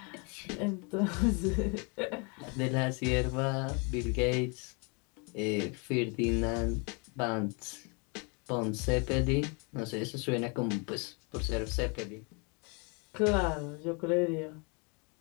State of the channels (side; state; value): right; quieter; 33.3 dB